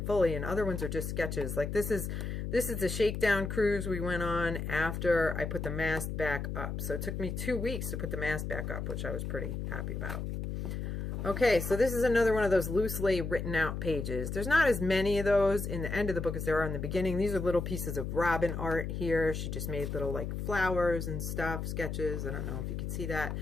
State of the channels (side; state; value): left; noise; hum, 4 dB below the sound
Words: fully, and other ones are just sketches. Like this is the shakedown cruise we went on after I put the mast back up. So it took me 2 weeks to put the mast back up, which I was pretty happy about. Okay, so this is another one of those loosely written out pages. There's not as many of those in the end of the book as there are in the beginning. These are little pieces of Robin art here. She just made little like flowers and stuff, sketches. I don't know if you can see that.